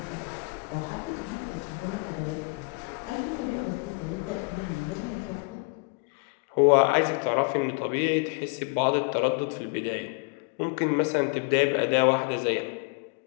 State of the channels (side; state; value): right; quieter; 32.4 dB